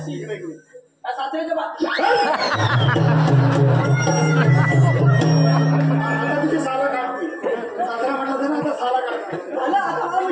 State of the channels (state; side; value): identical; both; correlation 1.00